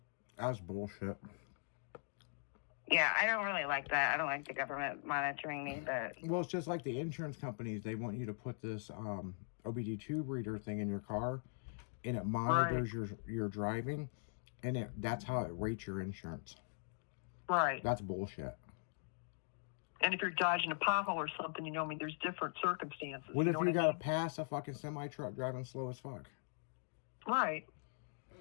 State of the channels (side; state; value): right; silent; digital silence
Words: That's bullshit. Yeah, I don't really like that. I don't like the government monitoring me, but... Well, it's just like the insurance companies. They want you to put this OBD2 reader thing in your car, and it monitors your driving, and that's how it rates your insurance. Right. That's bullshit. And if you're dodging a pothole or something, there's different circumstances. What if know you I got to mean? pass a fucking semi-truck driving slow as fuck? Right.